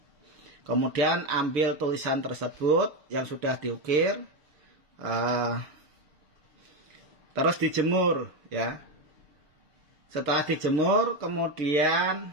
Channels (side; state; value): left; late; 6.7 ms